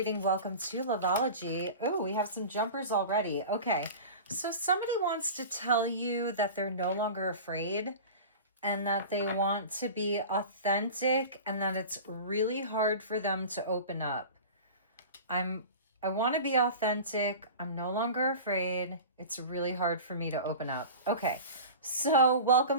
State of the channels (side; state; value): both; inverted; correlation -0.34